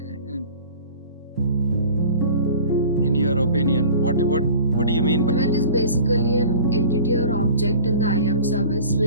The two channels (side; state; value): both; inverted; correlation -0.44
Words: your opinion? What do you mean by element? Is basically an entity or object in the IAM service